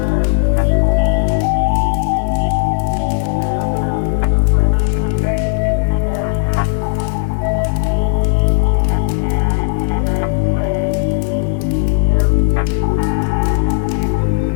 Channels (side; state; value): right; silent; 69 dB below the other